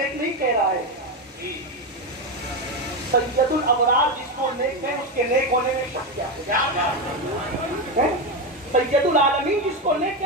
नहीं कह रहा है, सैयदुल अबरार जिसको नेक है, उसके नेक होने में शक क्या है? सैयदुल आलमीन जिसको नेक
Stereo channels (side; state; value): both; normal; correlation 0.12